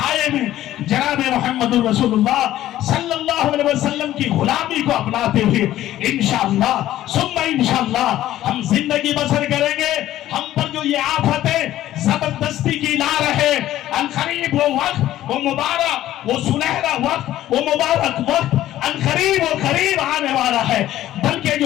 میں جناب محمد رسول اللہ صلی اللہ علیہ وسلم کی غلامی کو اپناتے ہوئے انشاءاللہ ثم انشاءاللہ ہم زندگی بسر کریں گے. ہم پر جو یہ آفتیں زبردستی کی لا رہے, عنقریب وہ وقت, وہ مبارک, وہ سنہرا وقت, وہ مبارک وقت عنقریب و قریب آنے والا ہے, بلکہ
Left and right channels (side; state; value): right; quieter; 13.7 dB